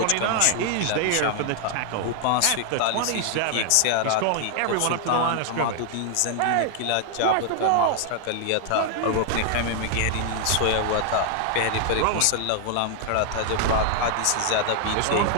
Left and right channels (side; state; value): both; different; correlation 0.00